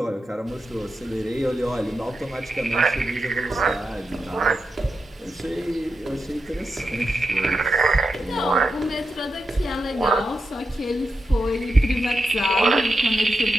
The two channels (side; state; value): both; normal; correlation 0.88